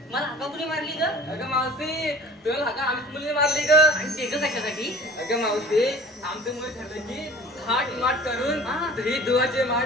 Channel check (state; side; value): normal; both; correlation 0.45